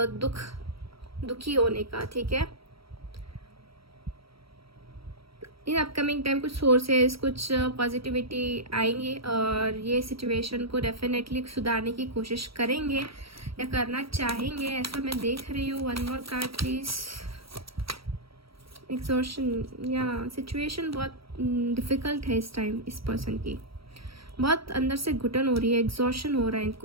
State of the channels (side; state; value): left; late; 0.75 ms